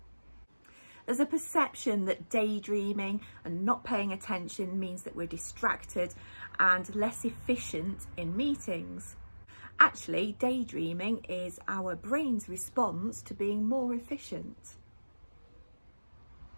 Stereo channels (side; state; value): both; inverted; correlation -1.00